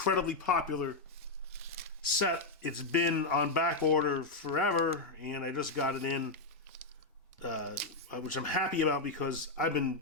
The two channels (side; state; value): right; quieter; 3.4 dB